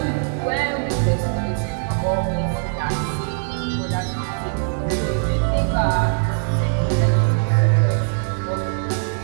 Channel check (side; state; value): left; silent; 65 dB below the other